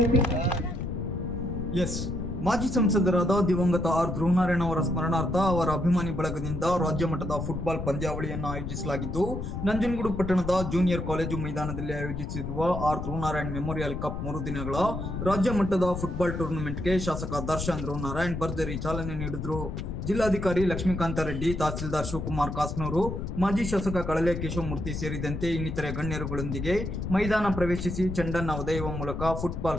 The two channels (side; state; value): left; noise; rumble, 5 dB below the sound